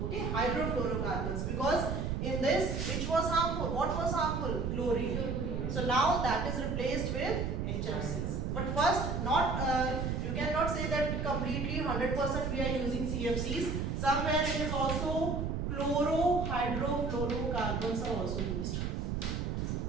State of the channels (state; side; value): noise; right; rumble, 1 dB below the sound